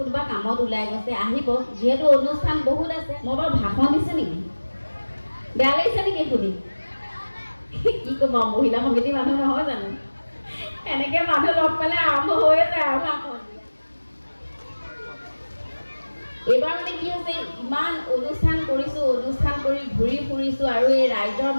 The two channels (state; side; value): inverted; both; correlation -1.00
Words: কামত ওলাই গৈছে, আহিব, যিহেতু অনুষ্ঠান বহুত আছে। মই বাৰু ভাষণ দিছোঁ নেকি? বেয়া লাগিছে নেকি শুনি? কি ক'ম, মহিলা সমিতি মানুহ নহয় জানো, এনেকৈ মানুহ লগ পালে আৰম্ভ হৈ যায় আৰু ভাষণ। এইবাৰ মানে কি হৈছে, ইমান অনুষ্ঠান কৰিছোঁ, অনুষ্ঠান কৰি ঘূৰি ফুৰিছোঁ আৰু এই ৰাইজৰ